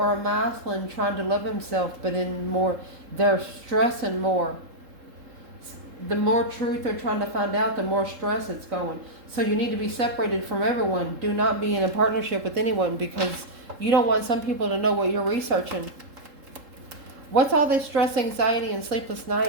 a masculine trying to love himself, but in more, they're stressing more. The more truth they're trying to find out, the more stress it's going. So you need to be separated from everyone. Do not be in a partnership with anyone, because you don't want some people to know what you're researching. What's all this stress, anxiety, and sleepless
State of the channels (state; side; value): late; left; 3.7 ms